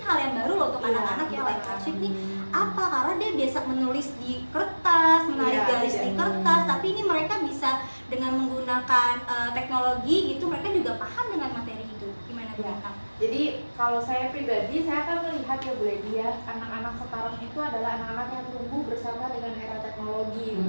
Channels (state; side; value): inverted; both; correlation -1.00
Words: hal yang baru loh untuk Iya, anak-anak ya, live betul. worksheet nih. Apa? Karena dia biasa menulis di kertas, menarik Iya, garis di iya. kertas, tapi ini mereka bisa dengan menggunakan teknologi gitu, mereka juga paham dengan materi itu. Gimana Bu Iya. Lintang? Jadi kalau saya pribadi, saya akan melihat ya Bu Lady ya, anak-anak sekarang itu adalah anak-anak yang tumbuh bersama dengan era teknologi